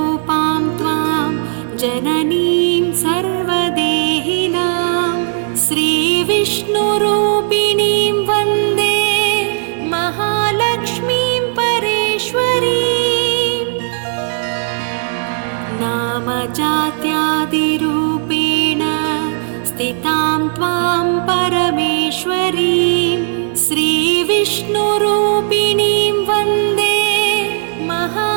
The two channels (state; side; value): silent; left; digital silence